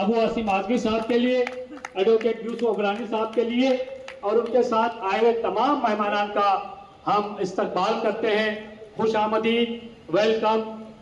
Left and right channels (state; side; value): identical; both; correlation 1.00